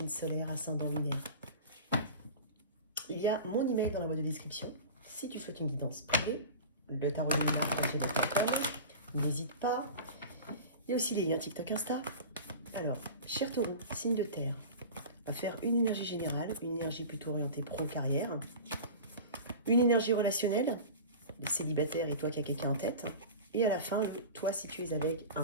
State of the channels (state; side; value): inverted; both; correlation -0.34